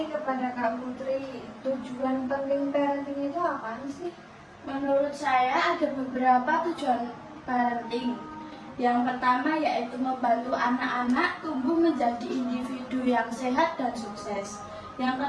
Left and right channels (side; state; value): both; identical; correlation 1.00